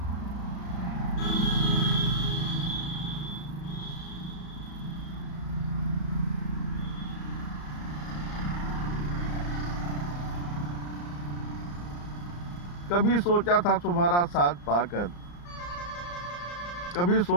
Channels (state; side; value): late; right; 34 ms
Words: कभी सोचा था तुम्हारा साथ पाकर, कभी